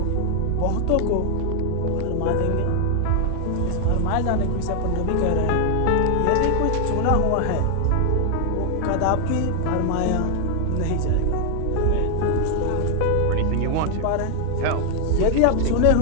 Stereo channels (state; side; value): different; both; correlation 0.00